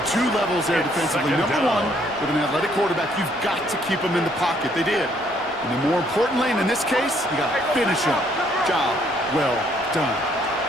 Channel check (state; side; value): normal; both; correlation 0.67